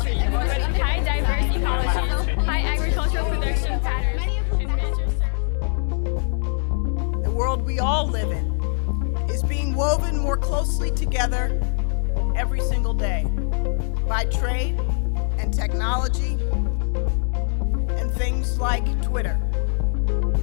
with high diverse ecology, high agricultural production patterns, and major The world we all live in is being woven more closely together every single day by trade and technology and things like Twitter.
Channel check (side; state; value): right; silent; digital silence